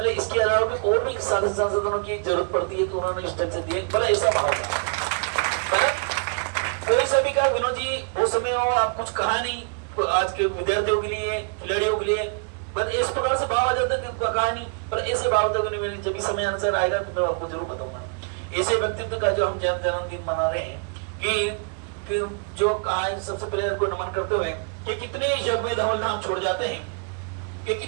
इसके अलावा भी और भी साधन संसाधनों की जरूरत पड़ती है, तो उन्होंने इस ढंग से दिए। भले ऐसा भाव था, कोई सा भी कहा विनोद जी वो समय हो आप कुछ कहा नहीं आज के विद्यार्थियों के लिए खिलाड़ियों के लिए, बस इस प्रकार से भाव आ जाता है कहा नहीं, पर ऐसे भाव तक जब भी समय अनुसार आएगा तो मैं आपको जरूर बताऊंगा। ऐसे व्यक्तित्व का जो हम जन्मदिन मना रहे हैं कि जो आज सबसे पहले उनको नमन करते हुए कि कितने जग में धवल धाम छोड़ जाते हैं, कि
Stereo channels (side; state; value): left; quieter; 37.9 dB